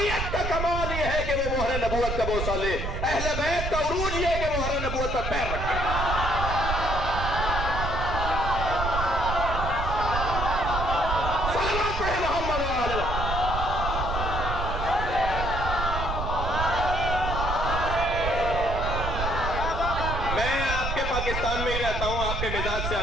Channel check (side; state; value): right; noise; rumble, 3 dB below the sound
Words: का कमाल यह है कि वो मोहर नबूवत का बोसा ले। अहले बैत का उरूज यह है कि मोहर नबूवत पर पैर रखे। पाकिस्तान में ही रहता हूं, आपके मिजाज से